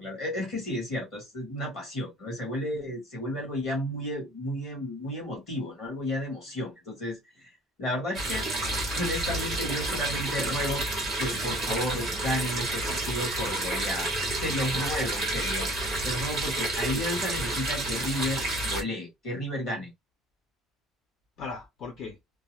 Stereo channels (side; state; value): both; normal; correlation 0.49